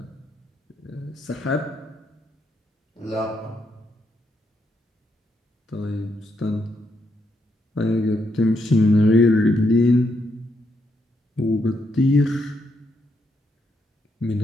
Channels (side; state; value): both; normal; correlation 0.78